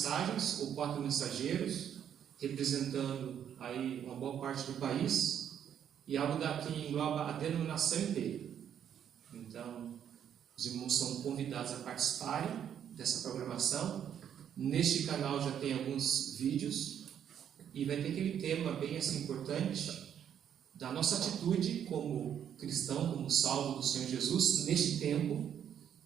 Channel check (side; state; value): left; quieter; 9.2 dB